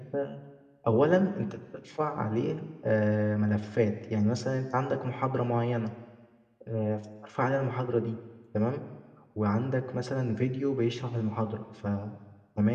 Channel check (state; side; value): identical; both; correlation 1.00